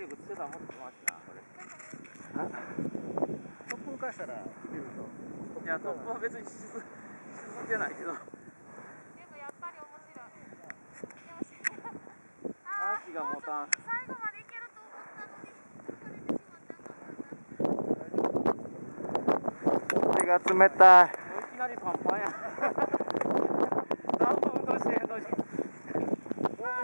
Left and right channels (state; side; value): inverted; both; correlation -1.00